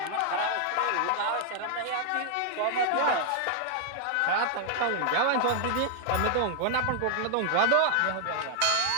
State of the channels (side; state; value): both; different; correlation -0.01